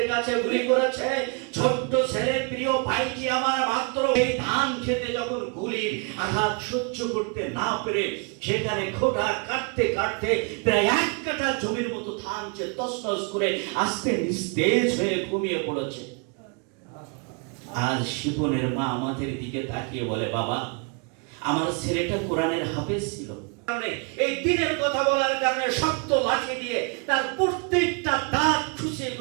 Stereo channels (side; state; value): left; quieter; 34.8 dB